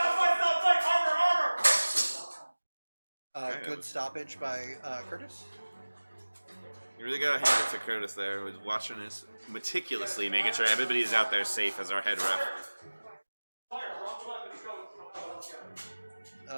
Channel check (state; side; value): inverted; both; correlation -1.00